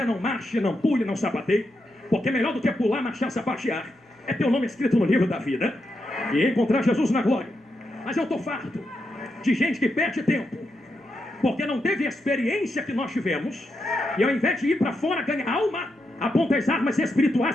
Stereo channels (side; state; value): both; normal; correlation 0.84